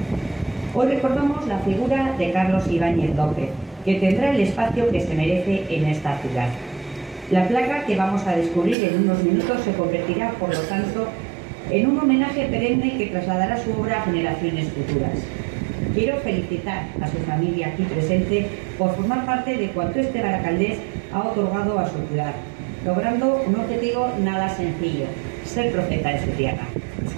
Hoy recordamos la figura de Carlos Ibáñez López, que tendrá el espacio que se merece en esta ciudad. La placa que vamos a descubrir en unos minutos se convertirá, por lo tanto, en un homenaje perenne que trasladará su obra a generaciones futuras. Quiero felicitar a su familia aquí presente por formar parte de cuanto este baracaldés ha otorgado a su ciudad, logrando un objetivo nada sencillo: ser profeta de su tierra. Es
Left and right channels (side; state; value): left; drops out; at 8.8 s